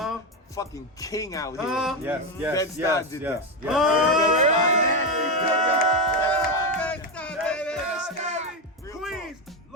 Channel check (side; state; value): both; normal; correlation 0.10